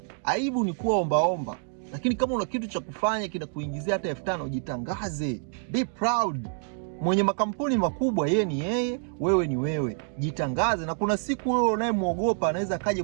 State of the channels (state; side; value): silent; left; 56 dB below the other